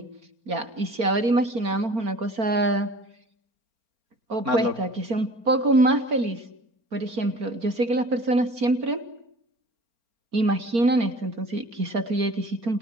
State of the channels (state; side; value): late; left; 4.4 ms